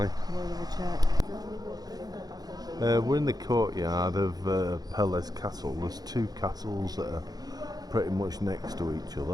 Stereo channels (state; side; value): late; left; 0.19 ms